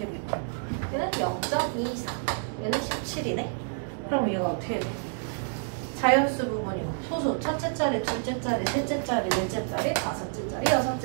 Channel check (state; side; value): silent; left; digital silence